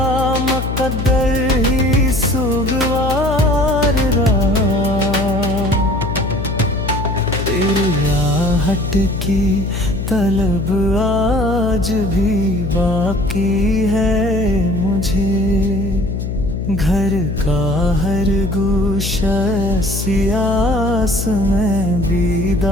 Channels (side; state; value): left; noise; hum, 3 dB below the sound